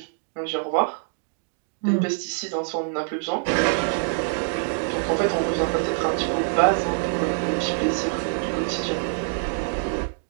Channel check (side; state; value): left; silent; digital silence